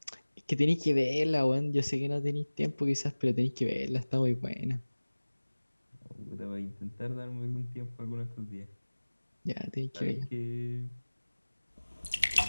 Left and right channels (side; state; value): both; inverted; correlation -1.00